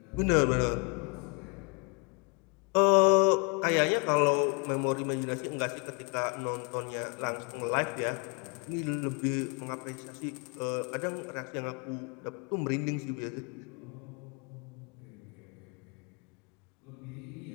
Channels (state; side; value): quieter; right; 35.5 dB